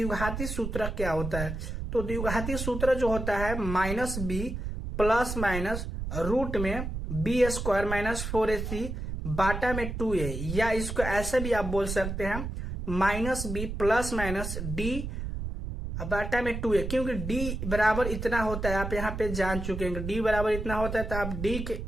सूत्र क्या होता है। तो द्विघाती सूत्र जो होता है minus B plus minus root में बी स्क्वायर माइनस 4ac बाटा में 2a, या इसको ऐसे भी आप बोल सकते हैं minus B plus minus d बाटा में 2a, क्योंकि d बराबर इतना होता है, आप यहाँ पे जान चुके हैं d बराबर इतना होता है, तो आप d के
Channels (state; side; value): noise; right; rumble, 5 dB below the sound